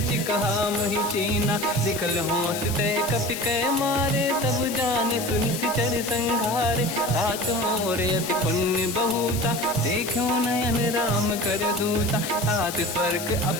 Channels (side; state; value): left; noise; hiss, 8 dB below the sound